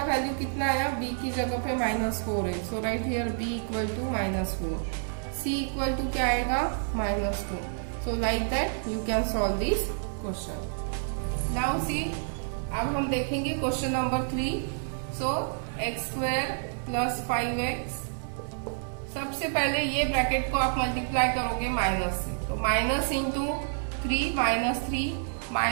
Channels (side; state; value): left; silent; digital silence